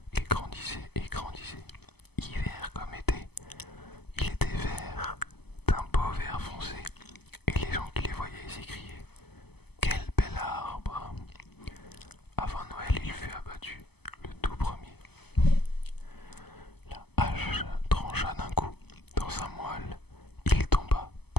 Il grandissait et grandissait, hiver comme été. Il était vert, d'un beau vert foncé, et les gens qui les voyaient s'écriaient « Quel bel arbre !» Avant Noël, il fut abattu, le tout premier. La hache trancha d'un coup dans sa moelle. Il tomba,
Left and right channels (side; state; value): right; late; 0.97 ms